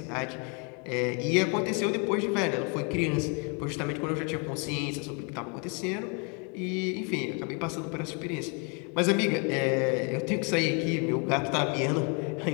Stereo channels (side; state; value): right; quieter; 35.6 dB